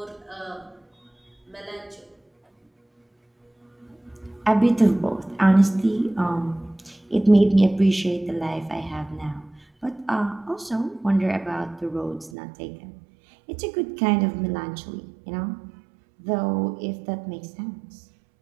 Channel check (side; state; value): left; drops out; at 12.3 s